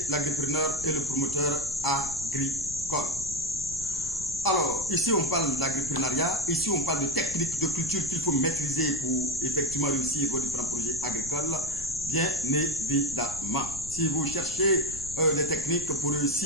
l'agripreneur et le promoteur agricole. Alors, ici on parle d'agripreneuriat, ici on parle de techniques de culture qu'il faut maîtriser pour effectivement réussir vos différents projets agricoles, bien évidemment. Si vous cherchez des techniques pour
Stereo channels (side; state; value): left; noise; rumble, 14 dB below the sound